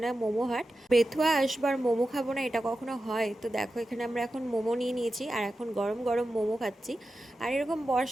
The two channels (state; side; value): normal; both; correlation 0.92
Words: মোমো হাট। বেথুয়া আসবার মোমো খাবো না এটা কখনো হয়? তো দেখো, এখানে আমরা এখন মোমো নিয়ে নিয়েছি আর এখন গরম গরম মোমো খাচ্ছি। আর এরকম